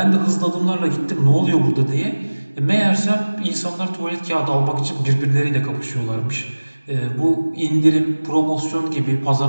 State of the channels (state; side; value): inverted; both; correlation -1.00